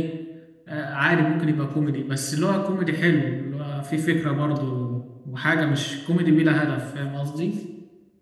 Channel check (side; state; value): both; identical; correlation 1.00